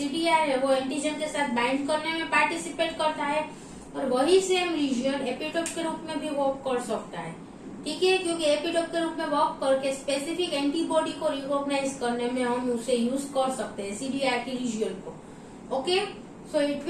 है वो एंटीजन के साथ बाइंड करने में पार्टिसिपेट करता है, और वही सेम रीजन एपिटोप के रूप में भी वर्क कर सकता है. ठीक है, क्योंकि एपिटोप के रूप में वर्क करके स्पेसिफिक एंटीबॉडी को रिकॉग्नाइज करने में हम उसे यूज कर सकते हैं सीडीआर की रीजन को. Okay, so it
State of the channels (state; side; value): identical; both; correlation 1.00